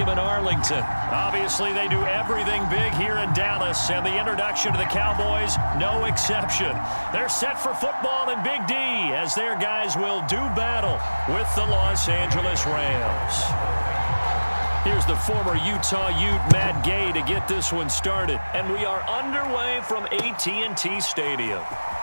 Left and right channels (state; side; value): inverted; both; correlation -1.00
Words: in Arlington. Obviously, they do everything big here in Dallas, and the introduction to the Cowboys, no exception. They're set for football in Big D as their guys will do battle with the Los Angeles Rams. Here's the former Utah Ute, Matt Gay, to get this one started. And we are underway from AT&T Stadium.